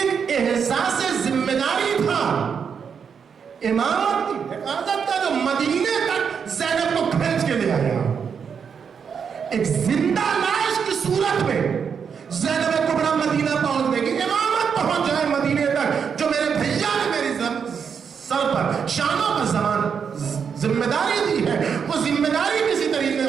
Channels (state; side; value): quieter; left; 6.7 dB